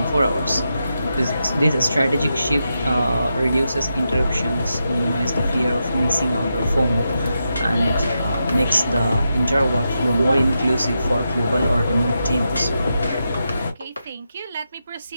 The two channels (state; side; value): inverted; both; correlation -0.87